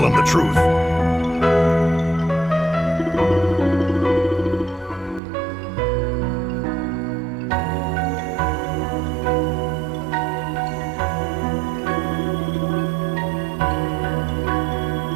him the truth.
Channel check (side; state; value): left; drops out; at 5.2 s